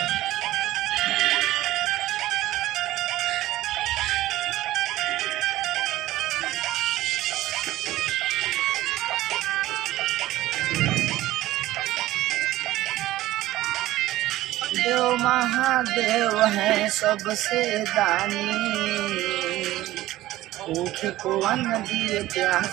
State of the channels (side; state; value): left; quieter; 15.9 dB